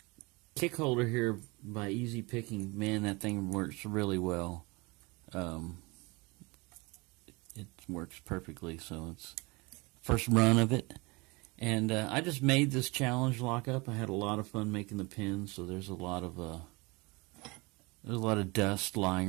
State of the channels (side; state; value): left; quieter; 25.8 dB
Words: kick holder here by Easy Picking, man, that thing works really well. It works perfectly. So it's first run of it. And I just made this challenge lock up. I had a lot of fun making the pins, so there's a lot of dust